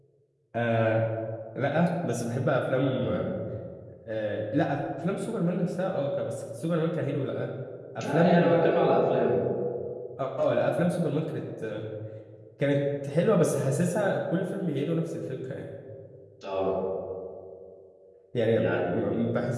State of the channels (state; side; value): identical; both; correlation 1.00